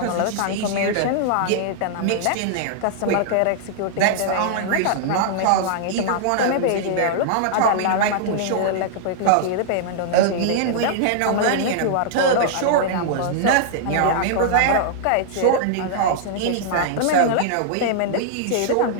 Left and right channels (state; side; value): different; both; correlation -0.01